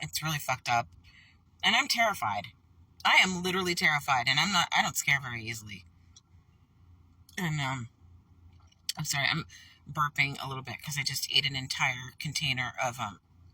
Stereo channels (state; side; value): identical; both; correlation 1.00